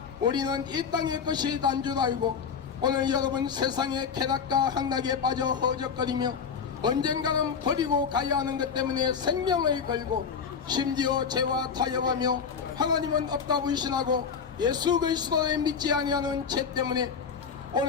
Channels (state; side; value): quieter; right; 6.4 dB